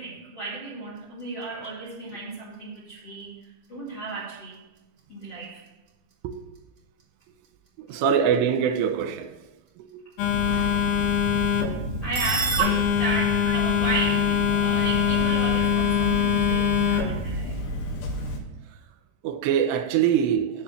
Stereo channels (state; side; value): normal; both; correlation 0.01